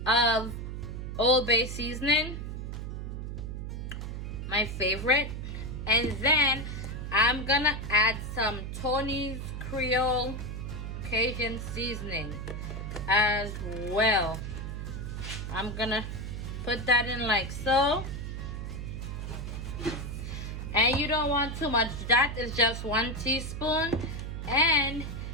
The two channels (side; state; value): right; noise; hum, 6 dB below the sound